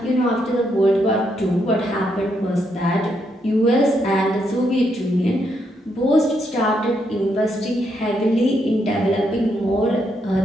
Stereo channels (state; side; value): normal; both; correlation 0.78